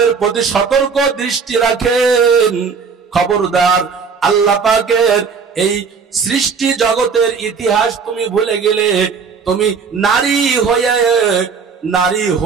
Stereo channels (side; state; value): left; quieter; 5.6 dB